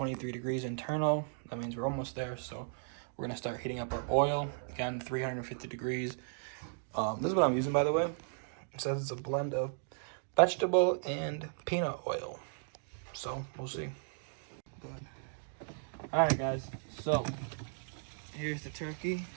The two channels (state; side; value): silent; left; digital silence